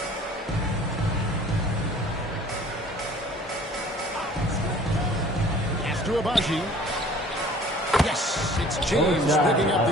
Pass to Abaji. Yes, it's James picking up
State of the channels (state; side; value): normal; both; correlation 0.50